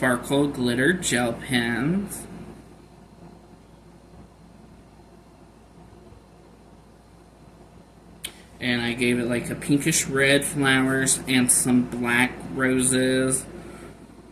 Glitter Gel Pens. And I gave it like a pinkish red flowers and some black roses.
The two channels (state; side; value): identical; both; correlation 1.00